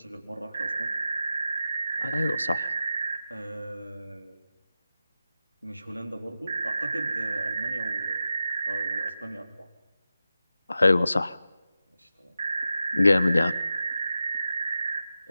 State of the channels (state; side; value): inverted; both; correlation -0.92